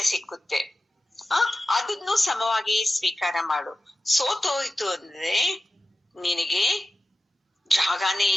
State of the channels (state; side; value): normal; both; correlation 0.93